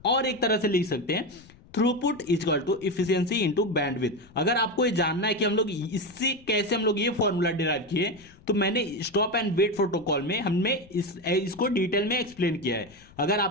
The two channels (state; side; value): noise; left; rumble, 25 dB below the sound